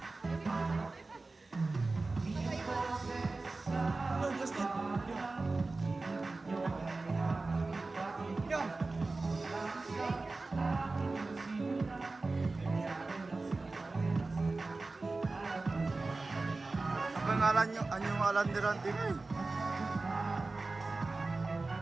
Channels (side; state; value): left; quieter; 3.5 dB